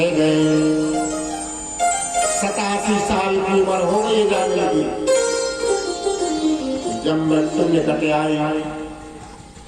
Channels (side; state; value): both; identical; correlation 1.00